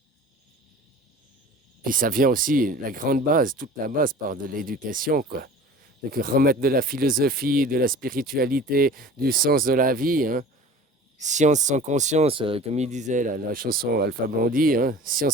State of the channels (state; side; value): normal; both; correlation 0.42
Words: Puis ça vient aussi, la grande base, toute la base part de l'éducation, quoi. Donc remettre de la philosophie, de la spiritualité, du sens de la vie, hein. Science sans conscience, comme il disait la chanson Alpha Blondy, hein.